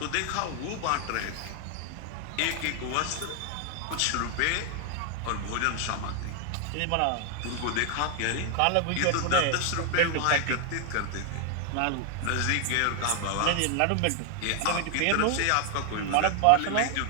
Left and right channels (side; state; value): both; different; correlation 0.00